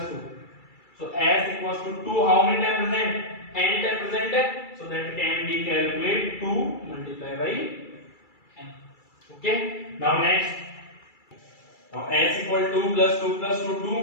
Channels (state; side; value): late; right; 2.3 ms